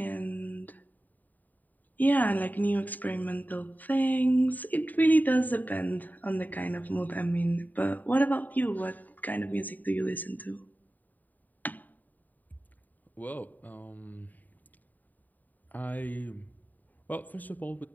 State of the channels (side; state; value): right; late; 0.085 ms